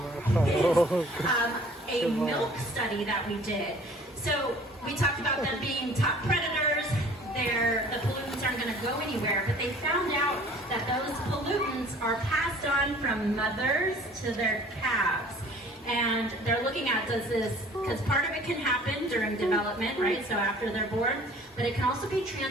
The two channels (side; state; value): both; normal; correlation 0.51